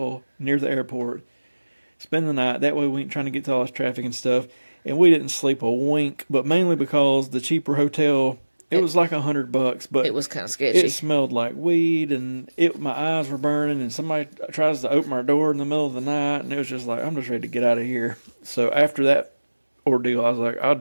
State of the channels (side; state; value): both; inverted; correlation -1.00